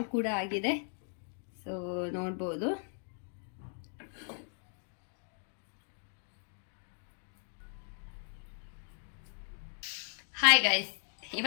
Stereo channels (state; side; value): silent; right; 53 dB below the other